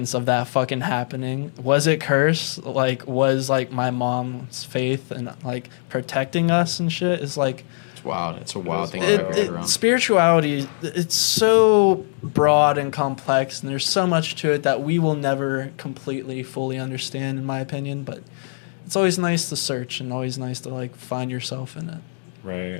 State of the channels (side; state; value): right; silent; digital silence